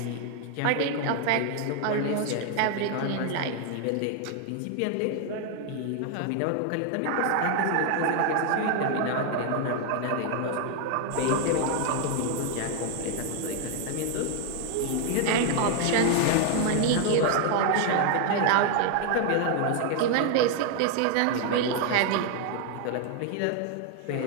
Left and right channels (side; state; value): both; different; correlation 0.00